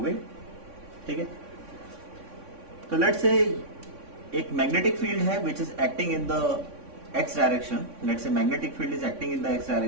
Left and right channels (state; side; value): late; left; 3.6 ms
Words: ठीक है, तो let's say एक magnetic field है which is acting in the x direction. Let's say magnetic field is acting in the x